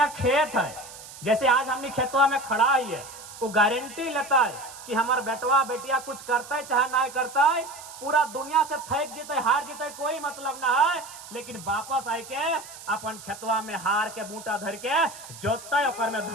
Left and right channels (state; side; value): noise; right; hiss, 15 dB below the sound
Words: खेत है, जैसे आज हमने खेतवा में खड़ा ही है, वो गारंटी लेता है कि हमार बेटवा बेटिया कुछ करता है चाहे ना करता है, पूरा दुनिया से थक जीते हार जीते कोई मतलब ना है, लेकिन वापस आए के अपन खेतवा में हार के बूटा धर के जोतता है, ओकर में